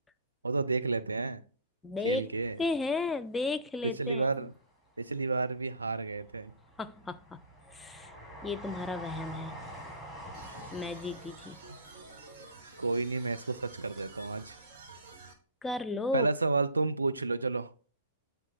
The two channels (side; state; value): both; inverted; correlation -0.39